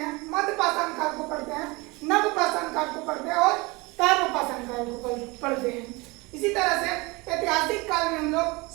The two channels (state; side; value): quieter; left; 24.8 dB